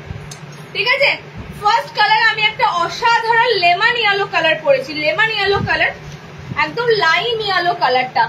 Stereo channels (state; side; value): identical; both; correlation 1.00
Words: ঠিক আছে। ফার্স্ট কালার আমি একটা অসাধারণ লেমন ইয়েলো কালার পরেছি, লেমন ইয়েলো কালার, একদম লাইম ইয়েলো কালারটা।